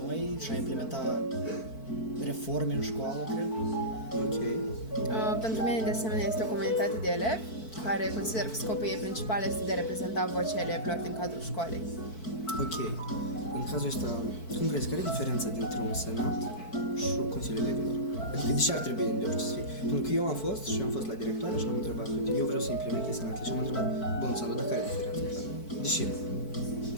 noi și a implementa reforme în școală, cred. Ok. Pentru mine, de asemenea, este o comunitate de elevi care consider că scopul ei principal este de a reprezenta vocea elevilor din cadrul școlii. Ok. În cazul ăsta, cum crezi, care e diferența dintre un senat și Consiliul Elevilor? Adică de ce ar trebui de orice să fie? Pentru că eu am fost și am fost la directoare și am întrebat, uite, eu vreau să implementez senatele și am întrebat, bun, Sandu, dar care e diferența? De ce nu?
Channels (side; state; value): right; late; 4.5 ms